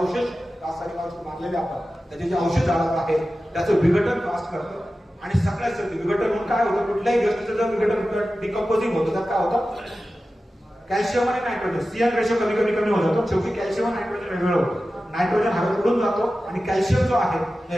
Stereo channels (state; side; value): normal; both; correlation 0.94